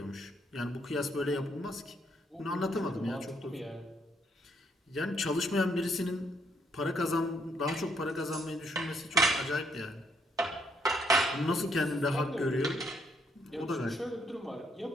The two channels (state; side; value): normal; both; correlation 0.71